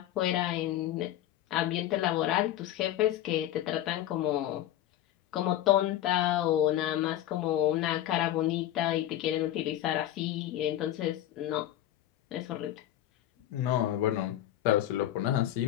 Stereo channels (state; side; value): quieter; right; 12.8 dB